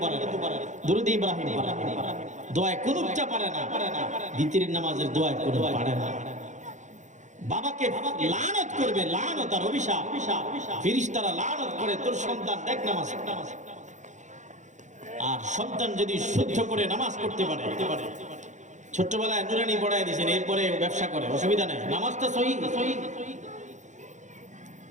পারে না, দুরূদ ইব্রাহিম পারে না, দোয়া কুনুতটা পারে না, দ্বিতীয় নামাজের দোয়া কুনুত পারে না। বাবাকে লানত করবে, লানত আর অভিশাপ, ফেরেশতারা লানত করে, তোর সন্তান দেখ নামাজ। আর সন্তান যদি শুদ্ধ করে নামাজ পড়তে পারে, ছোট্টবেলায় নুরানি পড়ায় দিয়েছেন, এরপরে ব্যবসা করে, অসুবিধা নেই, নামাজটা সহি।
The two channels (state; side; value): late; left; 0.35 ms